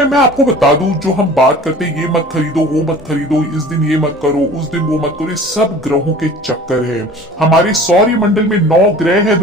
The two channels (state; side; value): normal; both; correlation 0.44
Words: मैं आपको बता दूं, जो हम बात करते हैं ये मत खरीदो, वो मत खरीदो, इस दिन ये मत करो, उस दिन वो मत करो, ये सब ग्रहों के चक्कर है। हमारे सौरमंडल में 9 ग्रह है